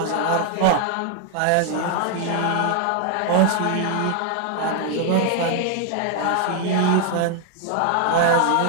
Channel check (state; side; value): different; both; correlation 0.00